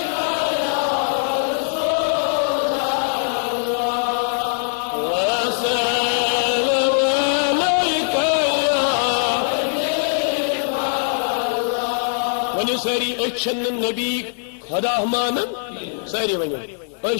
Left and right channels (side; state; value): right; silent; 65 dB below the other